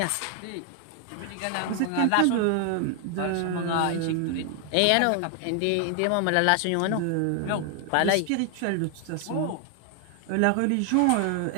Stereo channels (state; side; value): different; both; correlation 0.00